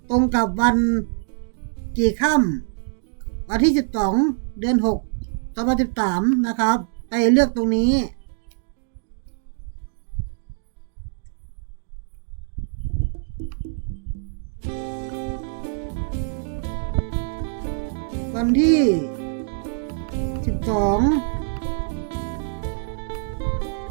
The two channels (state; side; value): silent; left; digital silence